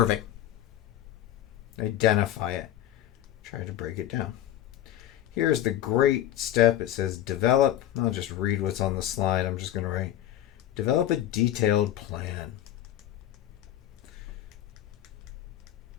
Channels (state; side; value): quieter; right; 12.4 dB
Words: Identify it. Try to break it down. Here's the great step. It says develop. I'll just read what's on the slide. I'm just going to write, develop a detailed plan